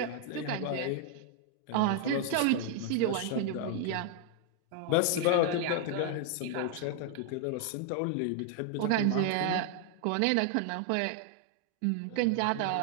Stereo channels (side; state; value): both; different; correlation 0.00